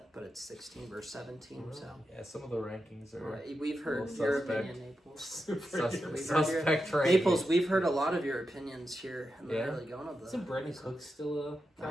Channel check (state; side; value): normal; both; correlation 0.88